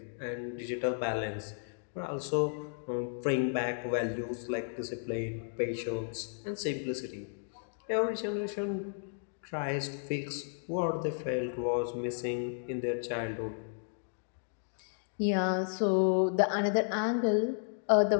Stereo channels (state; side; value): silent; right; digital silence